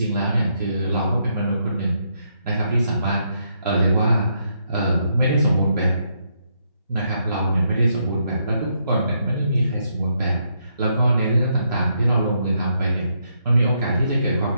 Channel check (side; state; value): both; inverted; correlation -0.77